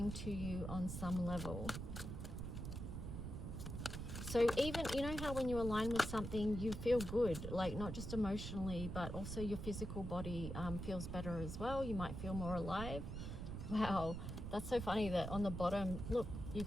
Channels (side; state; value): right; noise; rumble, 5 dB below the sound